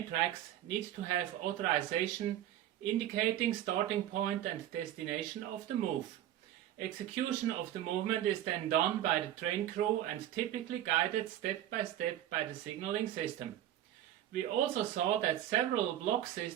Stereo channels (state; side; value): quieter; left; 12.0 dB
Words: tracks need to have authorization indicating starting point and destination of the move. Execution of the movement is then done by the train crew and typically guided step by step by the signaling system. We also saw that several block